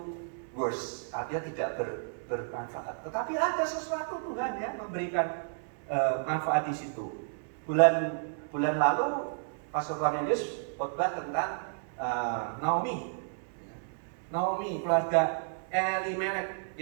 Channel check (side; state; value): left; silent; 57 dB below the other